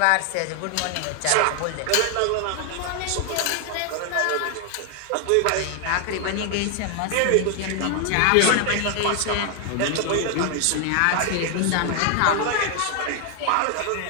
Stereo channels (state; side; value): different; both; correlation 0.00